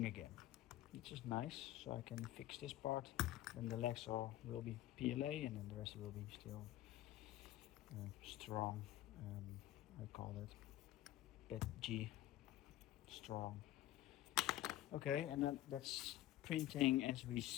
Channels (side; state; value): right; quieter; 14.7 dB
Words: again, which is nice. So I can fix this part, then the legs will be PLA, and then the rest will be still strong, I call it PET G strong. Okay, and then that's printing as we